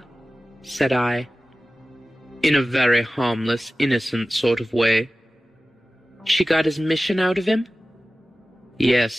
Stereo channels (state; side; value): normal; both; correlation 0.96